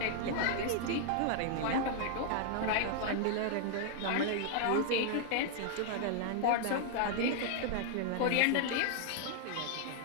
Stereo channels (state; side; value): different; both; correlation 0.00